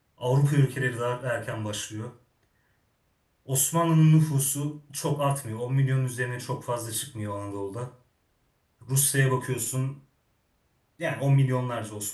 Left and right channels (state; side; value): identical; both; correlation 1.00